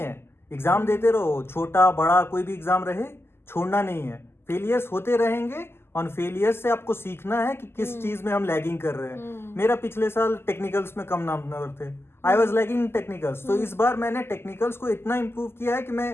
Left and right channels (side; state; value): right; late; 0.12 ms